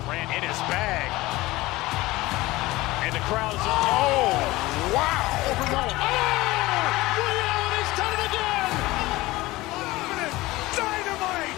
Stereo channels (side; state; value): right; quieter; 19.3 dB